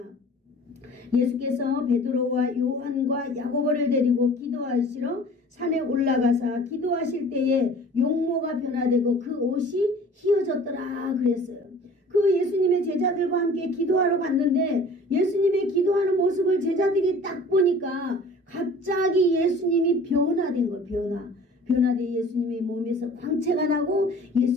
예수께서 베드로와 요한과 야고보를 데리고 기도하시러 산에 올라가사 기도하실 때에 용모가 변화되고 그 옷이 휘어졌더라 그랬어요. 그 예수님의 제자들과 함께 기도하러 갔는데 예수님의 기도하는 모습을 제자들이 딱 보니까 갑자기 예수님이 변화된 거예요. 변화된 예수님의 몸에서 광채가 나고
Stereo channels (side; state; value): both; normal; correlation 0.46